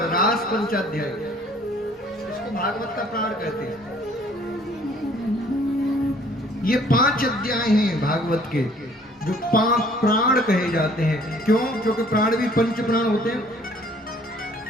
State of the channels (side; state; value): both; normal; correlation 0.58